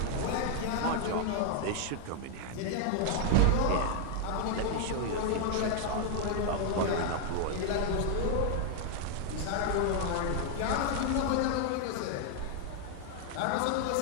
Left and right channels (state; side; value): different; both; correlation 0.00